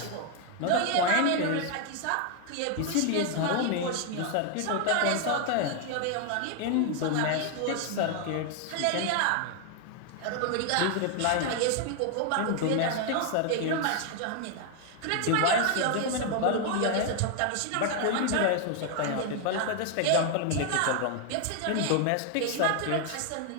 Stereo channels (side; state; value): both; different; correlation 0.00